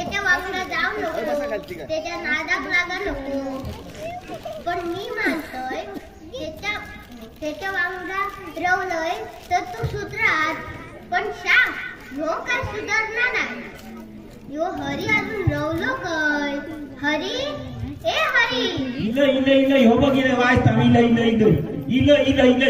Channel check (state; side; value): identical; both; correlation 1.00